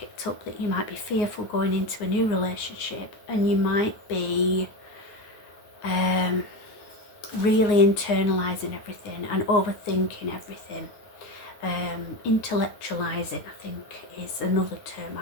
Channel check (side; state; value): right; late; 9.6 ms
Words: up that you might be fearful going into a new relationship, and you might be really internalising everything and overthinking everything. Intellectualising, I think, is another term